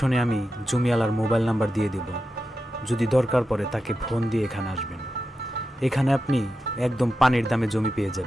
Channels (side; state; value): both; normal; correlation 0.90